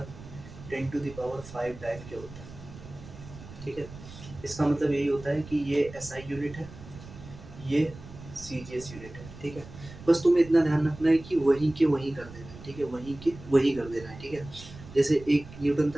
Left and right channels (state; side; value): noise; right; rumble, 16 dB below the sound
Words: 10⁵ डाइन क्या होता है, ठीक है। इसका मतलब यही होता है कि ये एसआई यूनिट है, ये सीजीएस यूनिट है, ठीक है। बस तुम्हें इतना ध्यान रखना है कि वहीं के वहीं कर देना है, ठीक है, वहीं के वहीं कर देना है, ठीक है। जैसे 1 न्यूटन